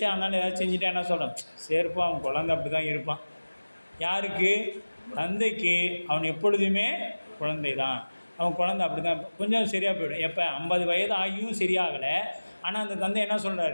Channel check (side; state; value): both; inverted; correlation -1.00